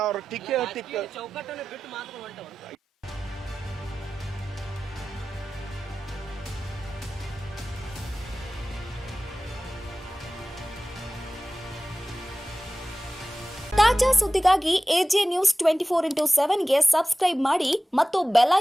ಟಿಕ್ಕೆ ಚೌಕಟ್ಟನ್ನು ಬಿಟ್ಟು ಮಾತ್ರ. ತಾಜಾ ಸುದ್ದಿಗಾಗಿ AJ News 24/7 ಗೆ ಸಬ್ಸ್ಕ್ರೈಬ್ ಮಾಡಿ ಮತ್ತು ಬೆಲ್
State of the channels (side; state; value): both; normal; correlation 0.96